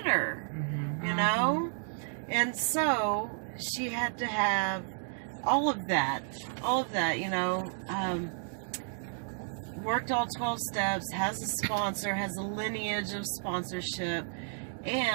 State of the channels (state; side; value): silent; left; digital silence